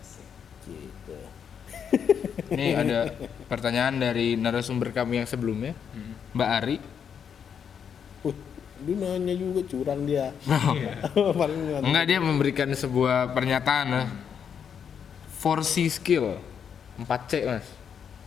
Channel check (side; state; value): right; quieter; 7.6 dB